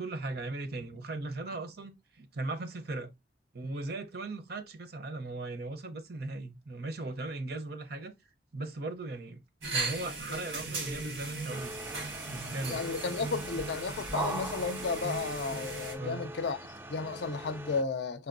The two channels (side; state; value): both; normal; correlation 0.15